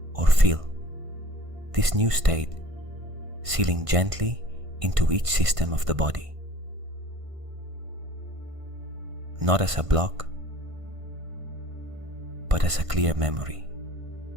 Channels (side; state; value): left; late; 1.5 ms